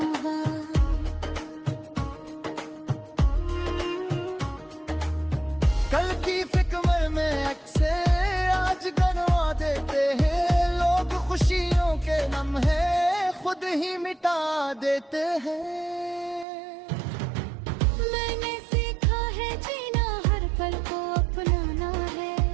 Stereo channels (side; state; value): left; drops out; at 16.4 s